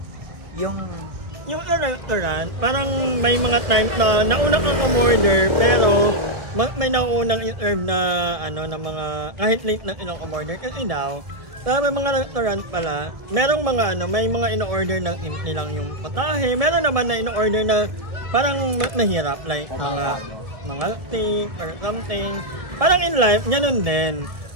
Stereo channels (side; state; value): left; late; 1.3 ms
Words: Yung restaurant, parang may mga time na nauna kang umorder, pero may naunang in-serve na na mga kahit late na in-order kasi daw may mga restaurant pala merong mga may mga in-order na nilang yung patahe, meron naman na in-order na parang mahirap like mga steak or something. Parang in life ganun din,